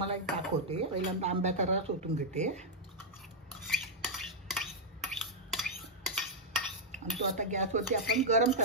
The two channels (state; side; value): normal; both; correlation -0.04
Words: एक दाखवते। पहिल्यांदा आंब्याचा रस ओतून घेते आणि तो आता गॅसवरती आपण गरम